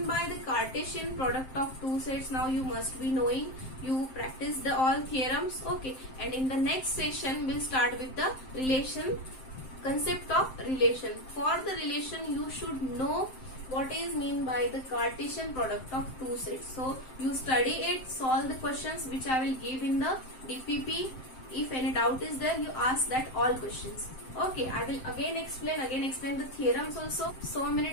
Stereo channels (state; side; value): late; right; 7.7 ms